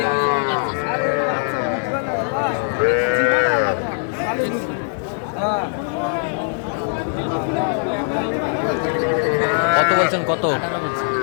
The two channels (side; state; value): right; silent; 60 dB below the other